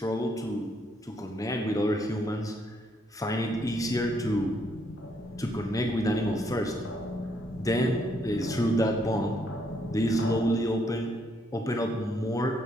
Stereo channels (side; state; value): both; normal; correlation 0.72